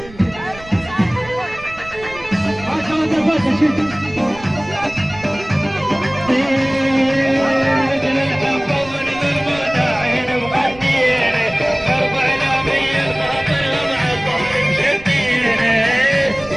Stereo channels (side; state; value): right; noise; rumble, 19 dB below the sound